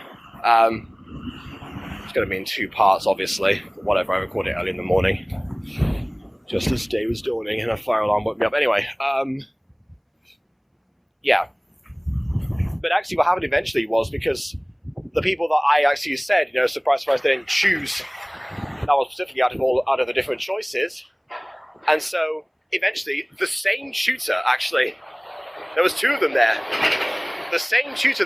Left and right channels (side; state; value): both; identical; correlation 1.00